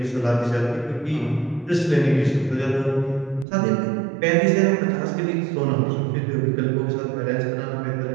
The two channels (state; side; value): drops out; left; at 3.5 s